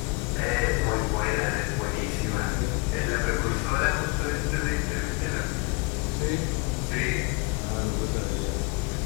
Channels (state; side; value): quieter; right; 28.4 dB